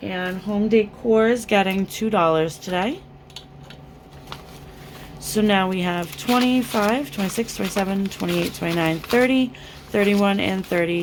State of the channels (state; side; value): identical; both; correlation 1.00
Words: and home decor is getting $2 today. So now we have 25, 26, 27, 28, 29, 30, 31, and